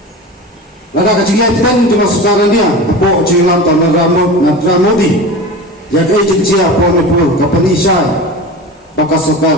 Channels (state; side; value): normal; both; correlation 0.31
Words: Lada kecilnya dan trong sarkar India, po cilam tanah Narendra Modi, yang agensi apa Manipur, kapani Shah, baka